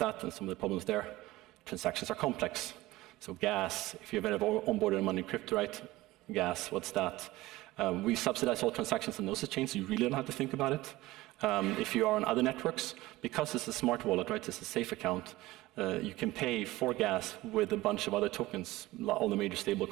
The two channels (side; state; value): left; quieter; 18.3 dB